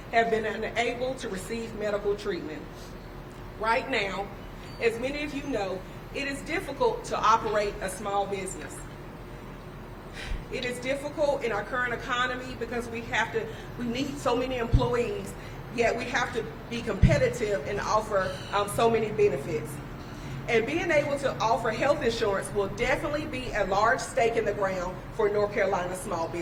have been unable to receive medical treatment. Right now, as many of you know, it is difficult to operate a small business. It is difficult in our current economy because we need so many employees, yet we have to be competitive and offer so many benefits. And being able to offer health insurance will definitely be a large stake in the ground for North Carolina small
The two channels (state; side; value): identical; both; correlation 1.00